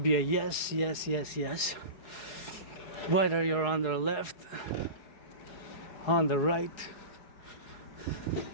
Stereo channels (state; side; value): late; right; 4.7 ms